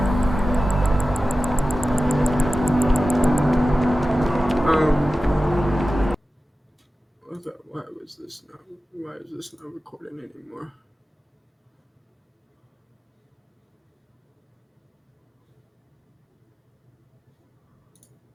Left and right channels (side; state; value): both; normal; correlation 0.95